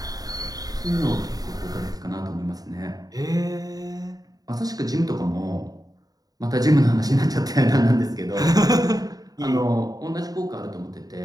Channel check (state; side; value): late; left; 0.18 ms